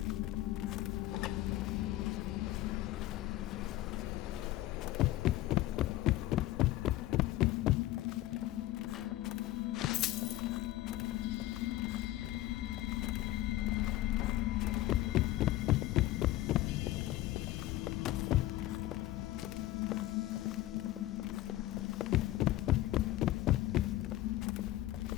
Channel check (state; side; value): quieter; right; 15.7 dB